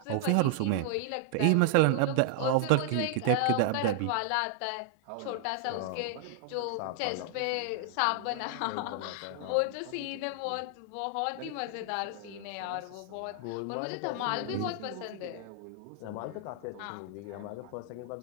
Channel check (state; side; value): different; both; correlation -0.01